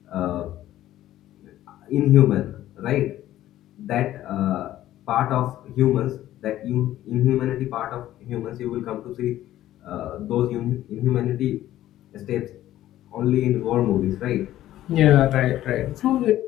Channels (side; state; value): right; quieter; 13.6 dB